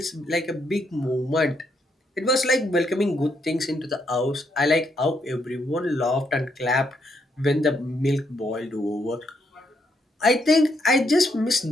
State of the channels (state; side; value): normal; both; correlation 0.76